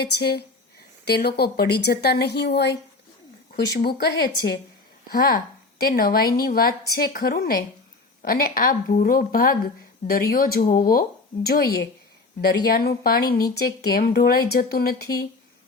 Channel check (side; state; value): right; quieter; 3.6 dB